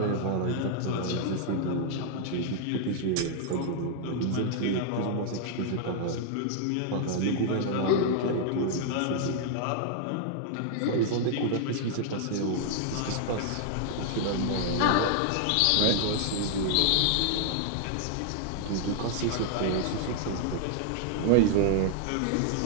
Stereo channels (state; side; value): different; both; correlation 0.00